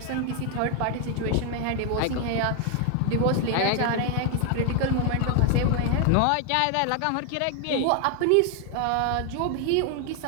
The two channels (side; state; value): both; different; correlation 0.00